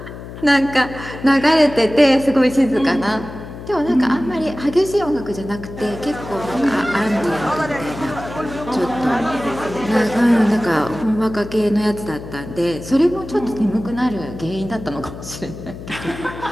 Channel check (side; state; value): left; noise; hum, 12 dB below the sound